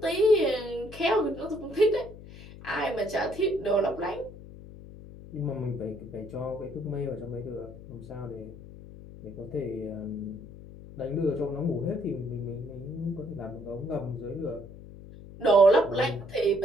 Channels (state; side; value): noise; left; hum, 16 dB below the sound